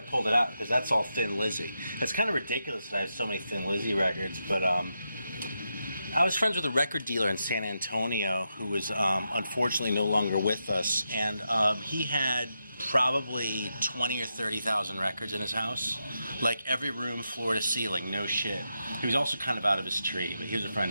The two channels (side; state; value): both; inverted; correlation -0.85